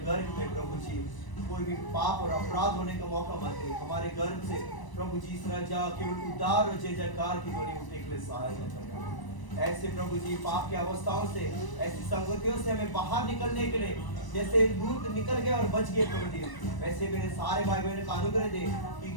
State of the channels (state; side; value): late; right; 1.0 ms